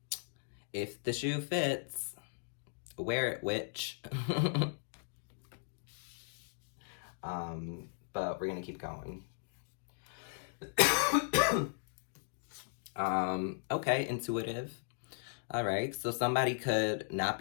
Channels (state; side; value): silent; right; digital silence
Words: if the shoe fits, wear it, witch. But we're gonna keep going. Okay, intuitive. All right, so somebody could not